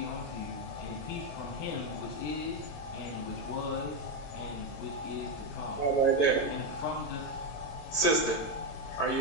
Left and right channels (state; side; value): late; right; 22 ms